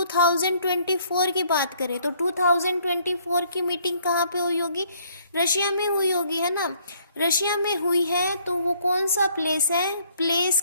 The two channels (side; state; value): both; inverted; correlation -0.64